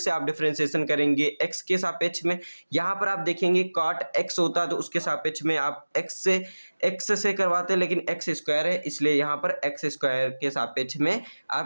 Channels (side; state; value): both; inverted; correlation -1.00